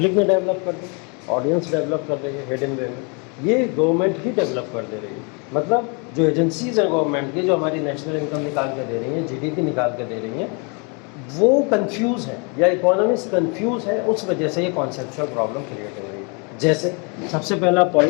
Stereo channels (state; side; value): quieter; right; 34.1 dB